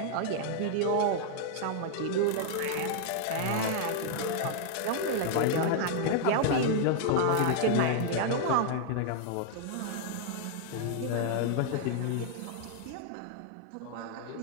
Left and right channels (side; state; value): both; different; correlation 0.00